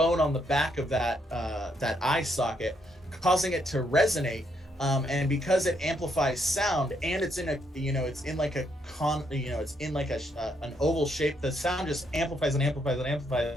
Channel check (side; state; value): both; normal; correlation 0.75